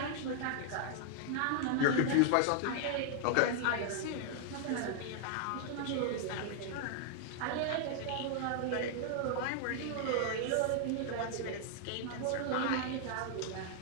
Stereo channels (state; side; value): different; both; correlation 0.00